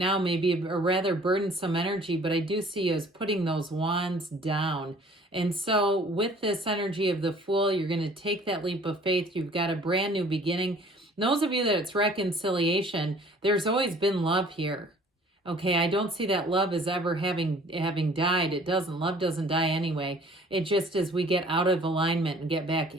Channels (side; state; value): both; normal; correlation 0.53